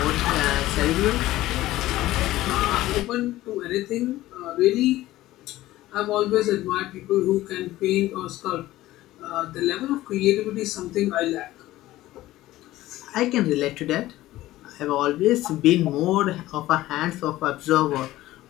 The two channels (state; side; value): quieter; right; 16.1 dB